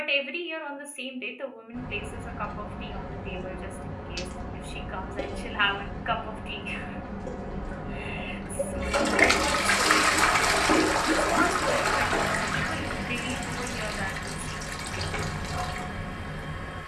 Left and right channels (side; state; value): both; identical; correlation 1.00